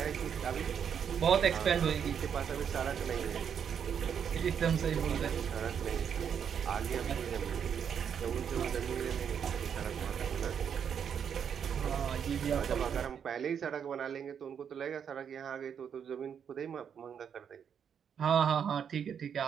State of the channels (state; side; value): quieter; left; 7.8 dB